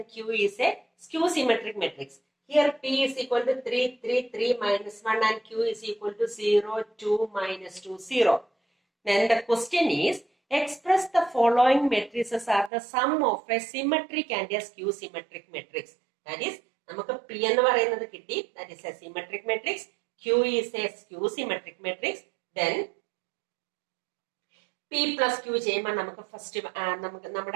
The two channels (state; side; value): drops out; left; at 12.7 s